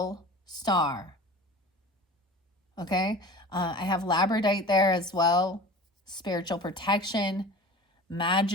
star. Okay, I have labradorite there as well. Spiritual protection,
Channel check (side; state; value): both; normal; correlation 0.38